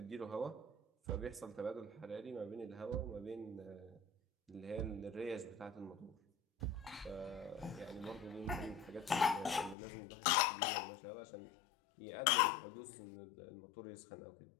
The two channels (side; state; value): right; drops out; at 9.8 s